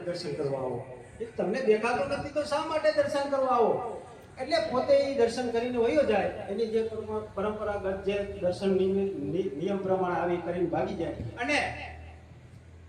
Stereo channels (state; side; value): identical; both; correlation 1.00